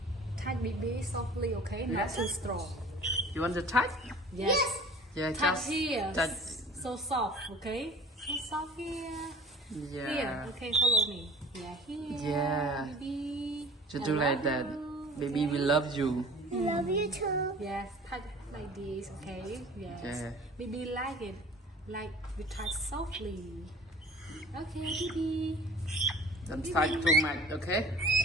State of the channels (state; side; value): normal; both; correlation 0.44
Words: Touch Bibi softly, okay? Not Yes. too strong. You want to touch? Yes. Yeah, Touch just here. touch. So soft, okay? So soft here. Yeah. Here, okay, follow me. Yeah, here. Yeah. Bibi. Just I do like love that. you, Baby, okay? we love you. I love you too. Yes, touch like this, okay? Yes. Yeah. Baby like it. Like we touch softly. Okay, Bibi. Don't touch too much, okay?